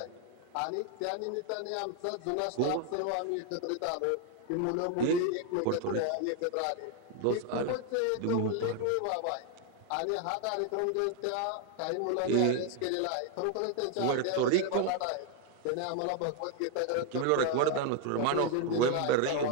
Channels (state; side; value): different; both; correlation 0.01